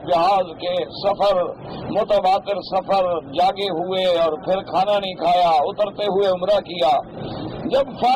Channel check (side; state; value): both; identical; correlation 1.00